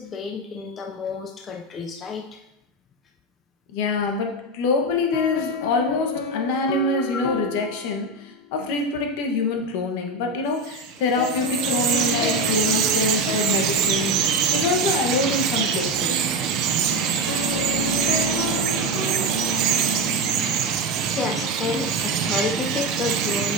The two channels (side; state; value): both; normal; correlation 0.16